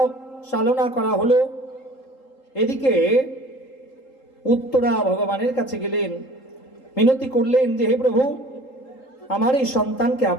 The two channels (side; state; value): right; late; 3.8 ms